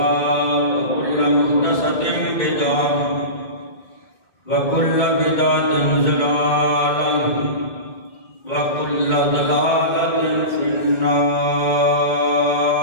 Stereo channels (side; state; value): right; late; 2.2 ms